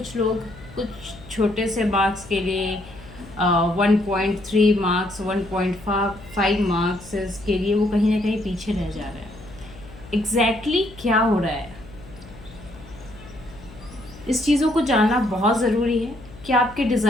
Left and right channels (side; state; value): left; noise; hum, 19 dB below the sound